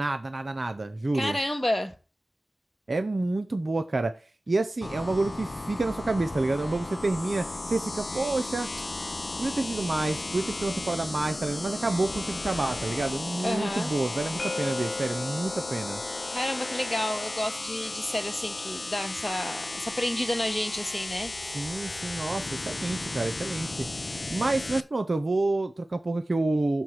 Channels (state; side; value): normal; both; correlation 0.96